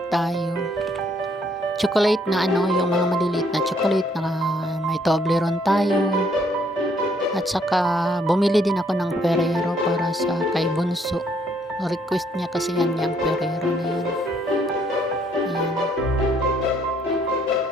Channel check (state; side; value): normal; both; correlation 0.68